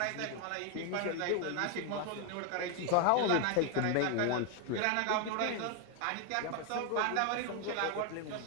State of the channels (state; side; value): different; both; correlation 0.01